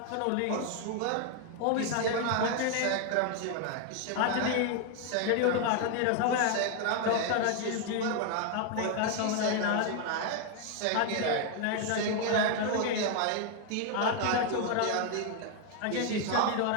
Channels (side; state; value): both; different; correlation 0.00